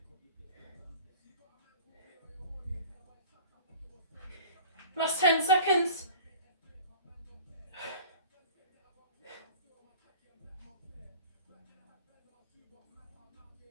Last 10 seconds.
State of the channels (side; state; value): both; inverted; correlation -0.42